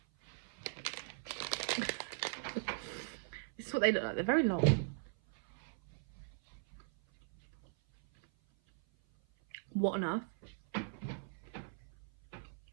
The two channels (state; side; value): silent; left; 52 dB below the other